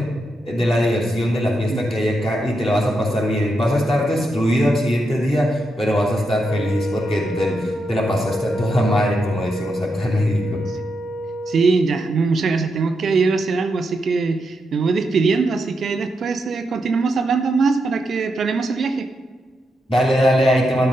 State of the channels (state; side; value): normal; both; correlation 0.84